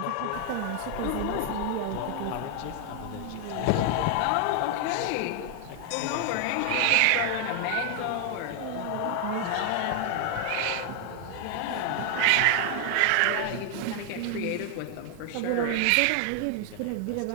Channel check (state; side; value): different; both; correlation 0.00